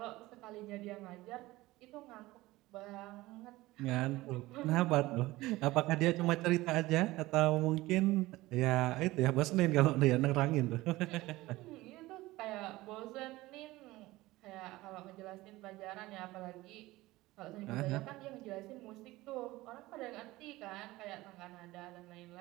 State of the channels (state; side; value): quieter; left; 18.8 dB